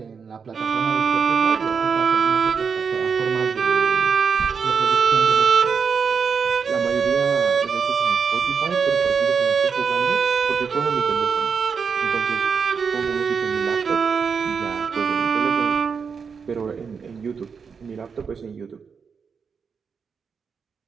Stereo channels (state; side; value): quieter; left; 5.9 dB